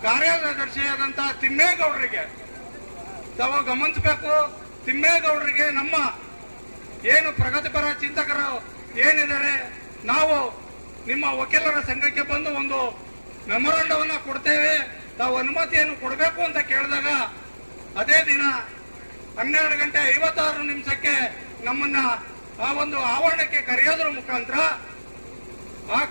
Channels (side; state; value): both; inverted; correlation -1.00